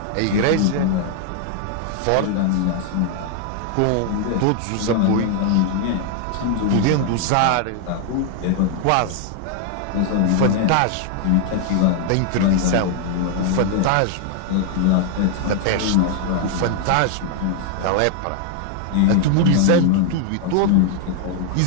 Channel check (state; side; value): different; both; correlation 0.00